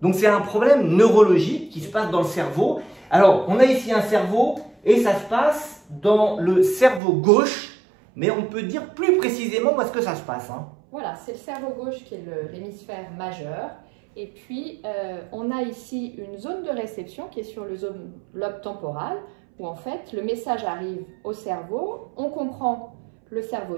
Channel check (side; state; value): left; drops out; at 7.0 s